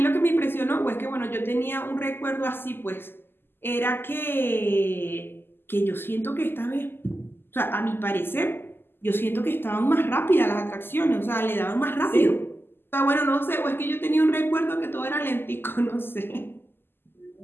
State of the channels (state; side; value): late; right; 0.10 ms